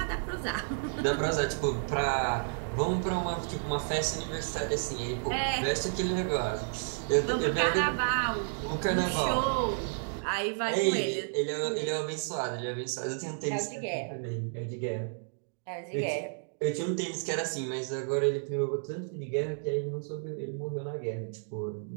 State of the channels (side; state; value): left; silent; digital silence